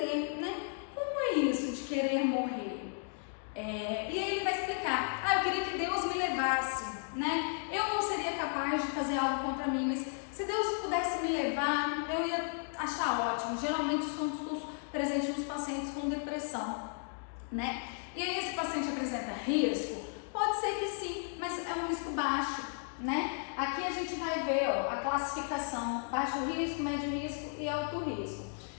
né? Como é isso de querer morrer? E aí ele vai explicar, eu queria que Deus me levasse, né? Eu não seria capaz de fazer algo contra mim, mas se Deus pudesse me levar, eu ia achar ótimo. Geralmente isso é um discurso presente nos pacientes com depressão, né? E aí esse paciente apresenta risco? Pode ser que sim, mas é um risco baixo, né? Aqui a gente vai ver a classificação: baixo risco, médio risco e alto risco.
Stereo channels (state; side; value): silent; right; 55 dB below the other